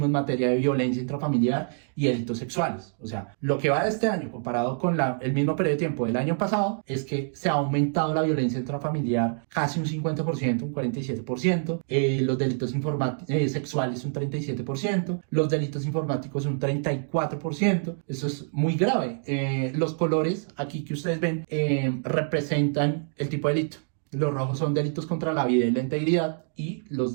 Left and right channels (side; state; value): left; silent; digital silence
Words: en materia de violencia intrafamiliar y delitos sexuales. O sea, lo que va de este año comparado con el mismo periodo de tiempo del año pasado es que se ha aumentado la violencia intrafamiliar casi un 50%, un 47%, los delitos sexuales un 37%, los delitos informáticos un 34%. Eso es muy grave. Los colores aquí que ustedes ven representan el tipo de delito. Los rojos son delitos contra la vida y la integridad y los